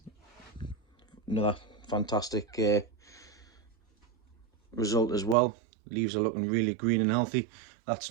another fantastic result as well. Leaves are looking really green and healthy. That's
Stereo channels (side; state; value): left; drops out; at 5.4 s